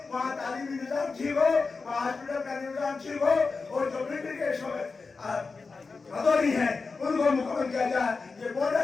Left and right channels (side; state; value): right; quieter; 4.3 dB